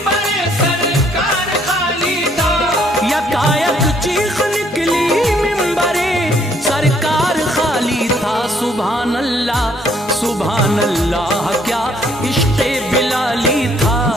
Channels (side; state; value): both; normal; correlation 0.66